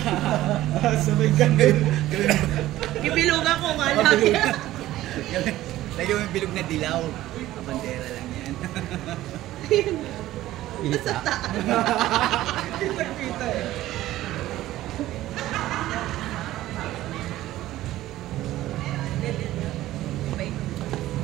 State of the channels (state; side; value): quieter; left; 15.2 dB